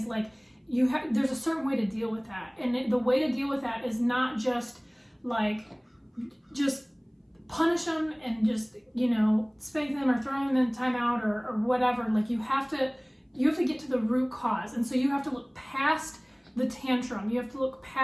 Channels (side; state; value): both; identical; correlation 1.00